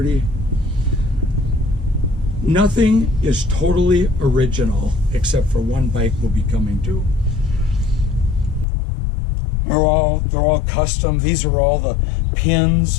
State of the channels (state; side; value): drops out; right; at 8.7 s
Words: Nothing is totally original except for one bike will be coming due. They're all custom. These are all the